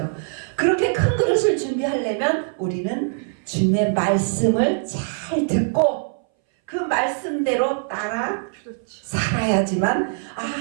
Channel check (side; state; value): left; silent; 61 dB below the other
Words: 그렇게 큰 그릇을 준비하려면 우리는 주님의 말씀을 잘 듣고 그 말씀대로 따라 살아야지만